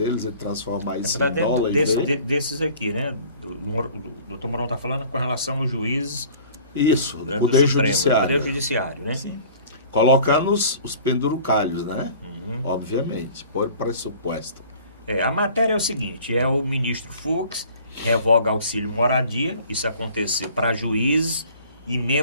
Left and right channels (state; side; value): inverted; both; correlation -0.48